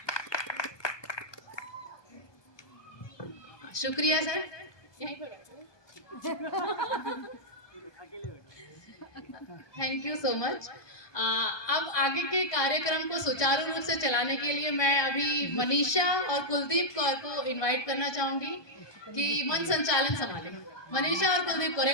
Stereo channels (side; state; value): right; late; 1.2 ms